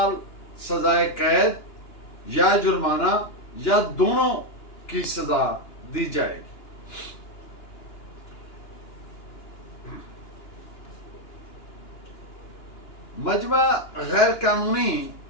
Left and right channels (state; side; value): late; right; 2.9 ms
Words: सजाए कैद या जुर्माना या दोनों की सजा दी जाएगी। मजमा गैर कानूनी